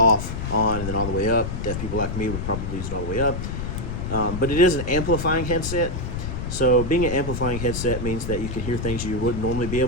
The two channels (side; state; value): left; noise; rumble, 5 dB below the sound